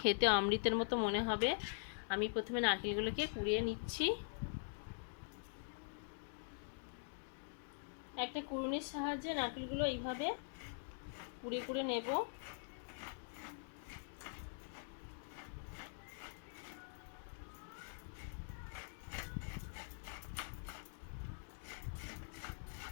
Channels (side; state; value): right; silent; digital silence